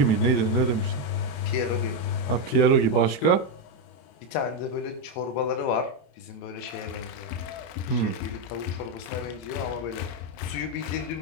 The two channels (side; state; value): right; late; 29 ms